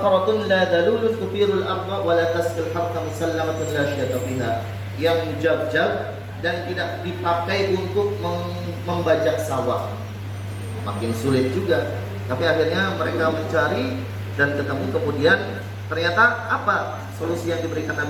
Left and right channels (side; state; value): both; identical; correlation 1.00